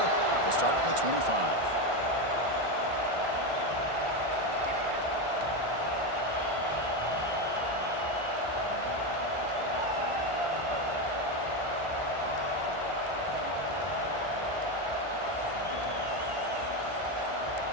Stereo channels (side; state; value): left; late; 1.4 ms